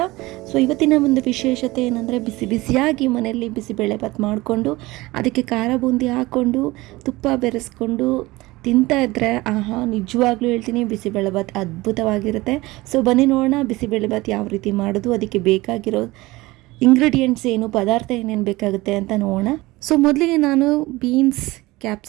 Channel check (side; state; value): left; quieter; 20.3 dB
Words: ಇವತ್ತಿನ ಒಂದು ವಿಶೇಷತೆ ಏನಂದರೆ, ಬಿಸಿ ಬಿಸಿಯಾಗಿ ಮನೆಯಲ್ಲಿ ಬಿಸಿಬೇಳೆಭಾತ್ ಮಾಡಿಕೊಂಡು ಅದಕ್ಕೆ ಖಾರ ಬೂಂದಿ ಹಾಕ್ಕೊಂಡು ತುಪ್ಪ ಬೆರೆಸ್ಕೊಂಡು ತಿಂತಾ ಇದ್ದರೆ ಆಹಾ, ನಿಜವಾಗ್ಲೂ ಹೇಳ್ತೀನಿ, ಬಿಸಿಬೇಳೆಭಾತ್ ಅದ್ಭುತವಾಗಿರುತ್ತೆ. ಬನ್ನಿ ನೋಡೋಣ ಬಿಸಿಬೇಳೆಭಾತ್ ಯಾವ ರೀತಿ ಮಾಡೋದು, ಅದಕ್ಕೆ ಬೇಕಾಗಿರೋ ಇಂಗ್ರೀಡಿಯೆಂಟ್ಸ್ ಏನು, ಪದಾರ್ಥ ಏನೇನು ಬೇಕಾಗುತ್ತೆ ಅಂತ ನೋಡೋಣ. ಮೊದಲಿಗೆ ನಾನು ಬೀನ್ಸ್,